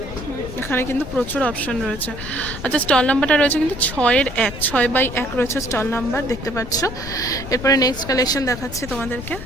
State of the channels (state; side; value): noise; left; rumble, 11 dB below the sound